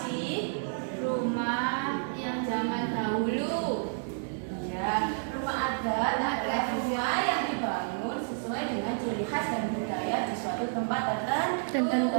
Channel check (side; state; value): left; silent; 58 dB below the other